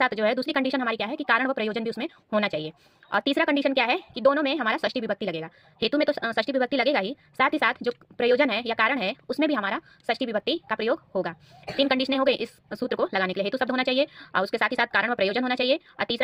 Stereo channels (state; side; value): identical; both; correlation 1.00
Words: जो है दूसरी कंडीशन हमारी क्या है कि कारण व प्रयोजन भी उसमें होना चाहिए। और तीसरा कंडीशन क्या है कि दोनों में हमारा षष्ठी विभक्ति लगेगा। हेतु में तो षष्ठी विभक्ति लगेगा ही, साथ ही साथ जो प्रयोजन है या कारण है उसमें भी हमारा षष्ठी विभक्ति का प्रयोग होगा। तीन कंडीशनें हो गई इस सूत्र को लगाने के लिए। हेतु शब्द होना चाहिए और उसके साथ ही साथ कारण व प्रयोजन होना चाहिए, और